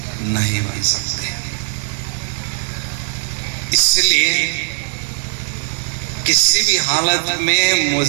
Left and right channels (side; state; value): left; silent; 56 dB below the other